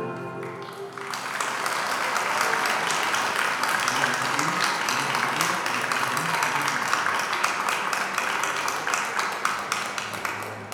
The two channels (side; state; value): both; identical; correlation 1.00